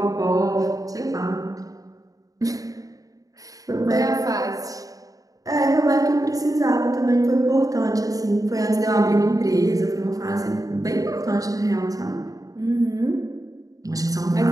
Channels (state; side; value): late; left; 0.17 ms